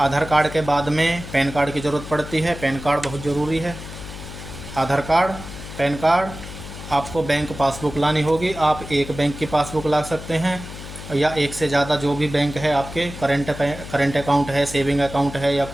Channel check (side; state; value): left; noise; hum, 12 dB below the sound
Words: कार्ड के बाद में पैन कार्ड की ज़रूरत पड़ती है, पैन कार्ड बहुत ज़रूरी है। आधार कार्ड, पैन कार्ड, आपको बैंक पासबुक लानी होगी। आप एक बैंक की पासबुक ला सकते हैं या एक से ज़्यादा जो भी बैंक है आपके, करंट अकाउंट है, सेविंग अकाउंट है या